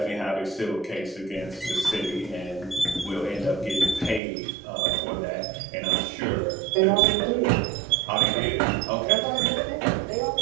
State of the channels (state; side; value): drops out; left; at 4.2 s